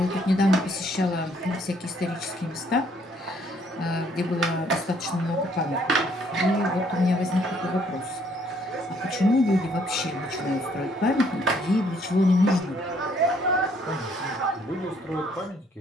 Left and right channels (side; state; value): both; normal; correlation 0.65